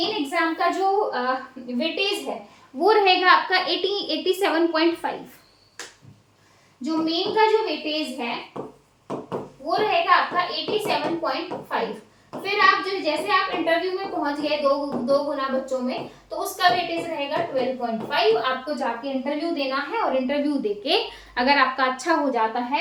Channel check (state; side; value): identical; both; correlation 1.00